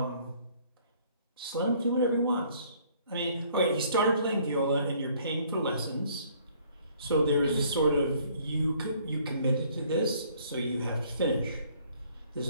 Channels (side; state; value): both; inverted; correlation -0.61